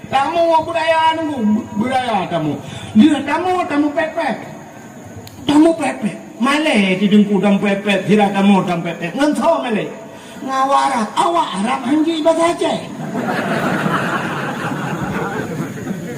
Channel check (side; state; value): both; identical; correlation 1.00